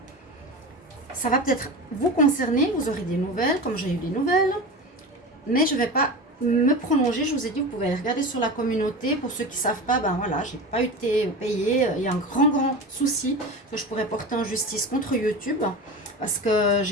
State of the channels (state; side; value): normal; both; correlation 0.28